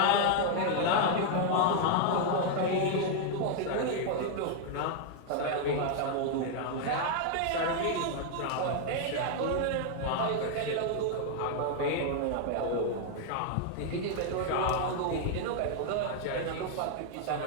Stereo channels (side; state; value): both; different; correlation 0.00